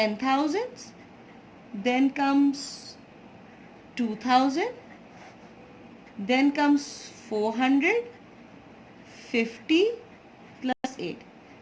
then comes 2,000, then comes 450 plus 8,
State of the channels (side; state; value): both; identical; correlation 1.00